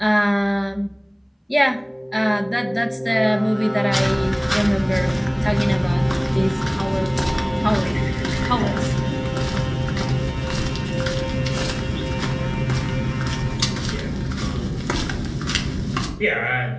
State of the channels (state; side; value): identical; both; correlation 1.00